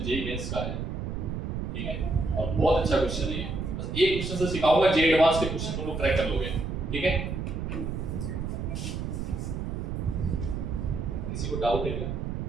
जेईई मेंस का है। ठीक है, और बहुत अच्छा क्वेश्चन है, बस एक क्वेश्चन से सिखाऊंगा, जेईई एडवांस के क्वेश्चन को क्रैक कर लोगे। ठीक है, किसी को डाउट है क्या,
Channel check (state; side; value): noise; right; rumble, 3 dB below the sound